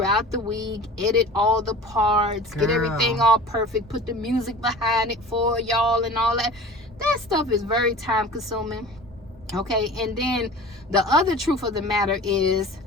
the week, edit all the parts, get everything all perfect, put the music behind it for y'all and all that. That stuff is very time consuming. Okay, and then the other truth of the matter is,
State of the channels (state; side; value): normal; both; correlation 0.39